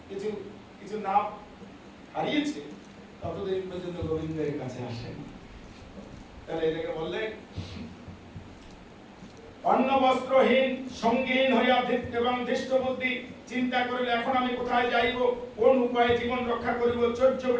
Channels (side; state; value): both; identical; correlation 1.00